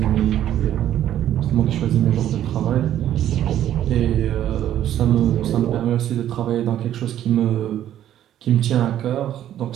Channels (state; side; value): quieter; left; 11.5 dB